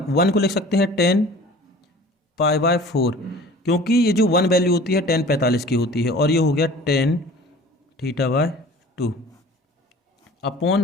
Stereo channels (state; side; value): normal; both; correlation 0.44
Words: को लिख सकते हैं टेन पाई बाय 4, क्योंकि ये जो 1 वैल्यू होती है 10 45 की होती है, और ये हो गया tan theta by 2 upon